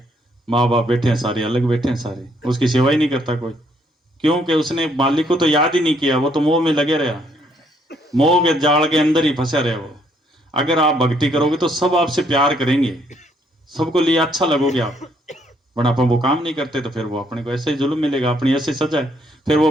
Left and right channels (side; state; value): both; normal; correlation 0.69